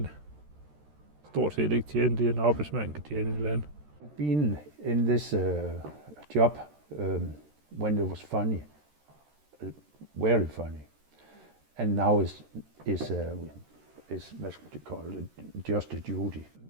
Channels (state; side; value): late; left; 13 ms